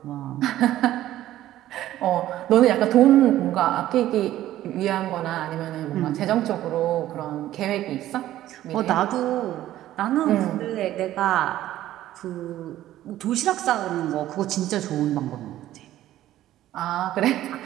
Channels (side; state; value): left; quieter; 13.7 dB